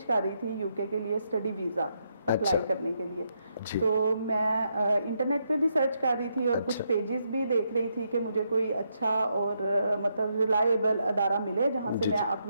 कर रही थी UK के लिए स्टडी वीज़ा अप्लाई करने के लिए। तो मैं इंटरनेट पे भी सर्च कर रही थी और कुछ पेजेस भी देख रही थी कि मुझे कोई अच्छा और मतलब रिलायबल अदारा मिले जहां से मैं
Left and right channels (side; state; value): both; inverted; correlation -0.79